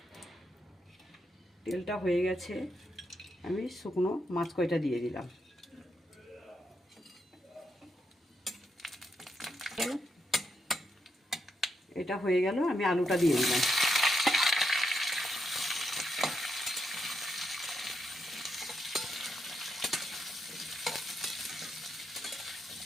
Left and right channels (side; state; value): both; normal; correlation 0.81